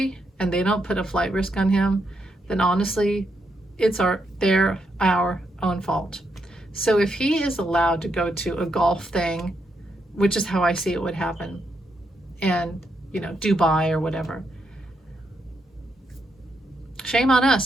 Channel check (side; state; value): both; normal; correlation 0.80